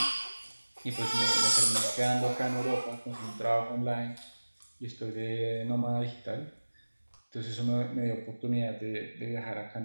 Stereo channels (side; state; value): both; inverted; correlation -1.00